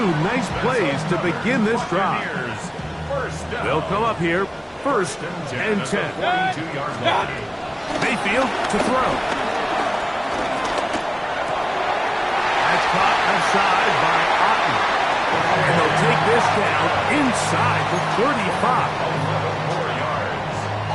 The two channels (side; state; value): both; identical; correlation 1.00